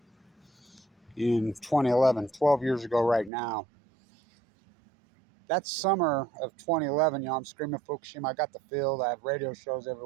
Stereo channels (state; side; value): drops out; left; at 3.3 s